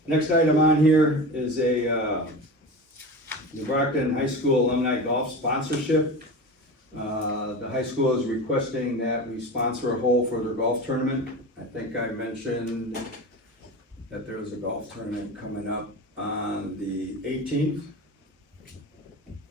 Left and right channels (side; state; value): both; normal; correlation 0.29